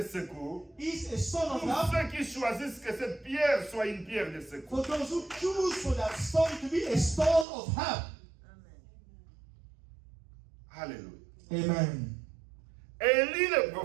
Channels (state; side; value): drops out; left; at 7.5 s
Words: secours is a stone of pour help ceux qui choisissent que cette pierre soit une pierre de secours. for those who choose for that stone to be a stone of help. Alléluia. Amen. Élie le